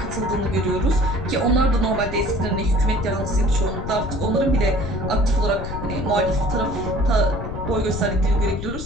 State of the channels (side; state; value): left; noise; rumble, 7 dB below the sound